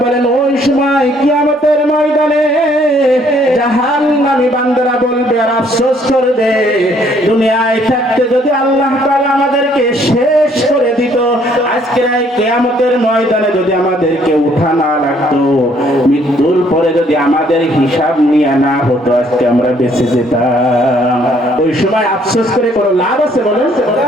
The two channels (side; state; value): both; normal; correlation 0.64